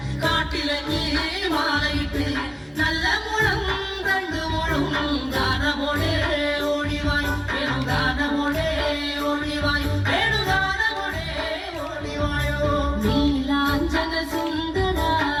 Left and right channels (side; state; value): both; identical; correlation 1.00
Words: കാട്ടിലഞ്ഞി മാലയിട്ട് നല്ല മുളം കണ്ടു മുളും ഗാനമോടെ ഓടിവായി വേണുഗാനമോടെ ഓടിവായി വേണുഗാനമോടെ ഓടിവായോ നീലാഞ്ജന സുന്ദര